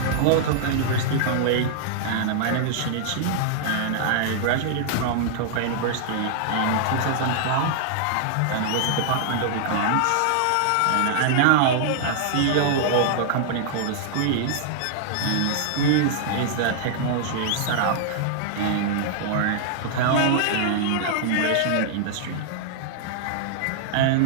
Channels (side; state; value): both; different; correlation -0.01